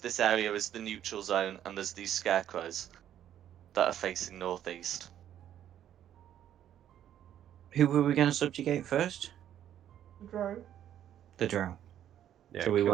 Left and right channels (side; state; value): left; quieter; 10.8 dB